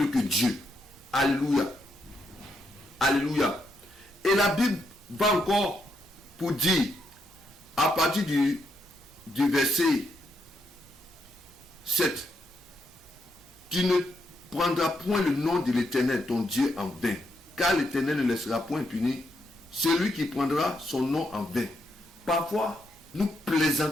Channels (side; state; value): both; normal; correlation 0.79